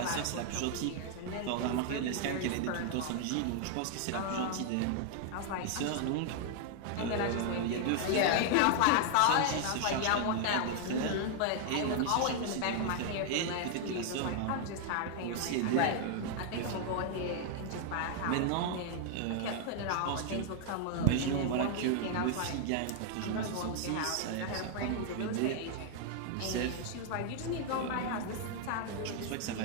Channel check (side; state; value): both; different; correlation 0.00